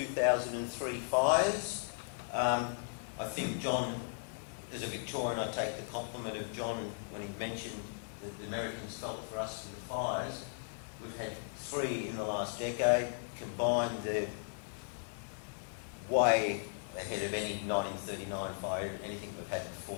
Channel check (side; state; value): right; silent; digital silence